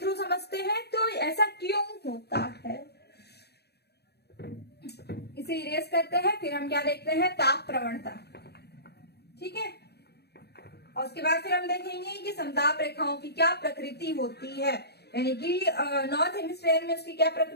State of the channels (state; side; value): late; right; 0.48 ms